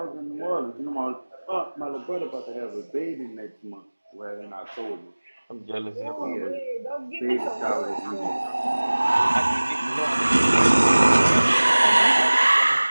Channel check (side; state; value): both; inverted; correlation -1.00